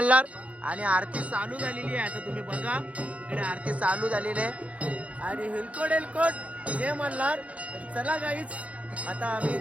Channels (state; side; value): late; left; 0.065 ms